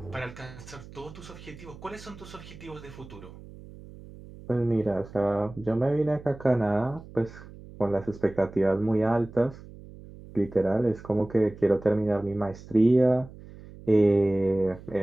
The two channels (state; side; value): noise; right; hum, 18 dB below the sound